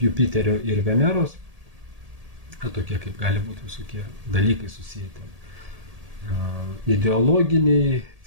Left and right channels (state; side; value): late; left; 1.8 ms